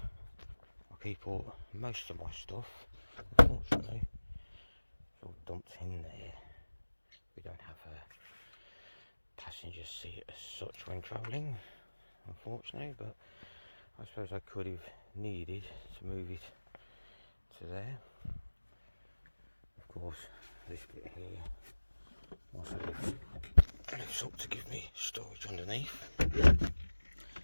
keep all most of my stuff. Unfortunately, it's all dumped in there. We don't have a passenger seat as such when travelling, unfortunately, but I suppose I could have needed to move it to there. Of course, this bit here also lifts up to give me storage underneath,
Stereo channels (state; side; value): inverted; both; correlation -1.00